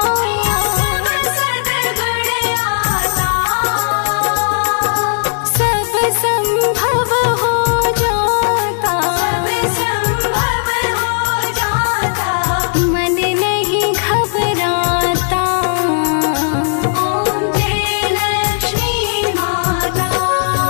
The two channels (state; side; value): silent; right; digital silence